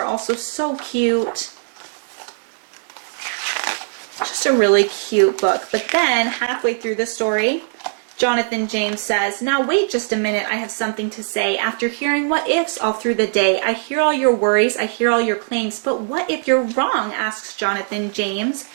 also so cute. Just a really cute book. But then halfway through the story, Jonathan James says, "Now wait just a minute, I have something to say. After hearing what ifs all through the day, I hear all your worries, I hear all your claims, but what if you're wrong?" asks Jonathan James.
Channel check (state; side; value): silent; left; digital silence